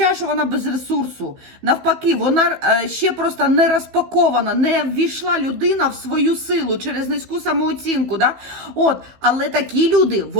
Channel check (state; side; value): late; left; 15 ms